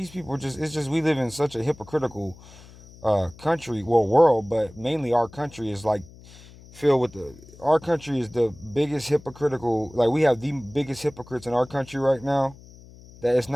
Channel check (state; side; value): noise; left; hum, 21 dB below the sound